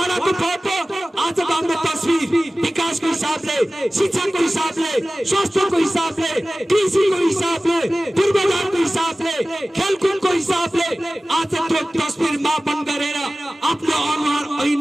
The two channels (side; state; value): both; normal; correlation 0.97